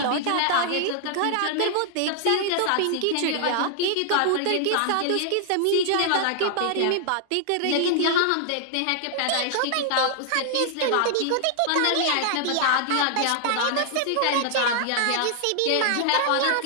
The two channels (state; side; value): different; both; correlation 0.00